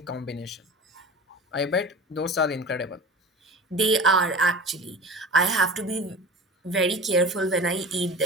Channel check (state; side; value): normal; both; correlation 0.35